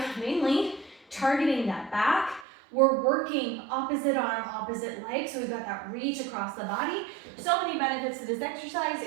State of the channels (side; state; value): left; drops out; at 2.5 s